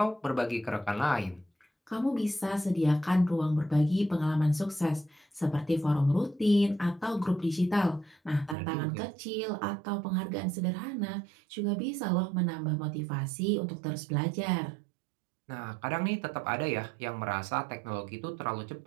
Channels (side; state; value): left; drops out; at 8.6 s